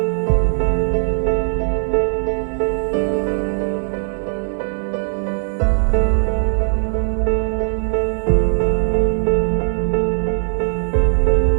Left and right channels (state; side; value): silent; left; 67 dB below the other